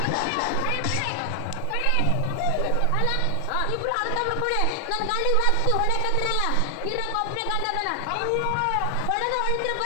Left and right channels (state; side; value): different; both; correlation 0.00